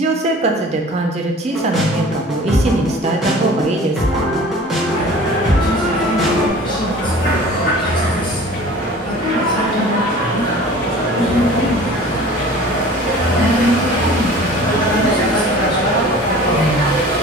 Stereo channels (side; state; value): both; normal; correlation 0.44